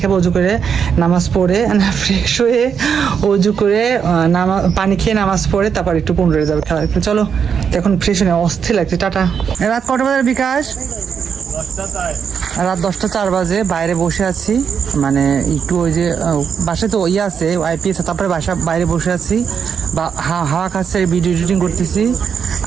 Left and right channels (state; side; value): quieter; left; 7.0 dB